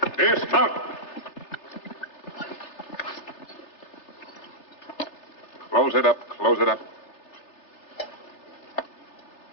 Dismount. Close it up. Close it up.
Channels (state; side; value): late; right; 3.3 ms